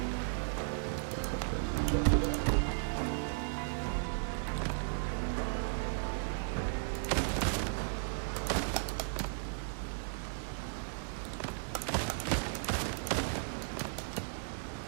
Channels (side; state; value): left; silent; digital silence